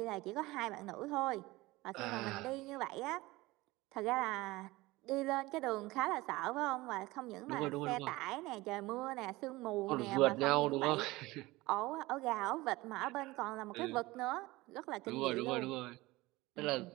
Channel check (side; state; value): left; quieter; 20.2 dB